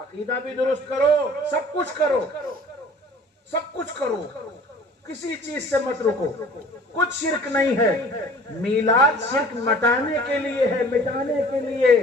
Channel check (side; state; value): both; normal; correlation 0.49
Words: بھی درست کرو، سب کچھ کرو، سب کچھ کرو، کسی چیز سے مت رکو، کچھ شرک نہیں ہے۔ میلاد شرک مٹانے کے لیے ہے، مٹانے کے لیے۔